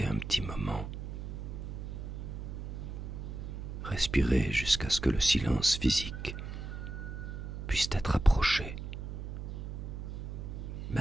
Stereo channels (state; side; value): noise; right; hum, 7 dB below the sound